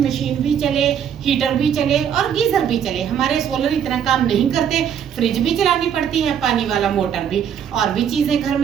मशीन भी चले, हीटर भी चले और गीजर भी चले। हमारे सोलर इतना काम नहीं करते, फ्रिज भी चलानी पड़ती है, पानी वाला मोटर भी, और भी चीजें घर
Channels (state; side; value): quieter; left; 8.6 dB